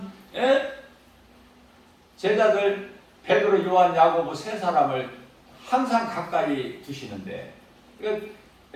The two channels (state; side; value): identical; both; correlation 1.00